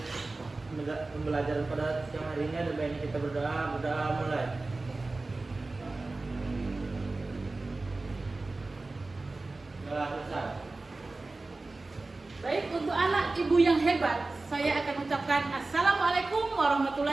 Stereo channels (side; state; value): left; quieter; 3.3 dB